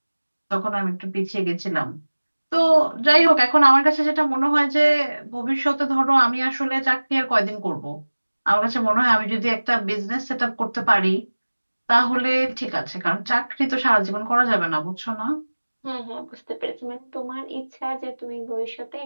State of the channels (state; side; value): inverted; both; correlation -1.00